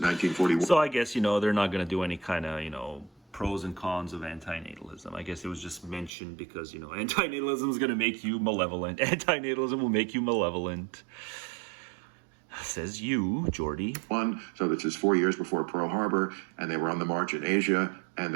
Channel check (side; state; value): left; drops out; at 6.1 s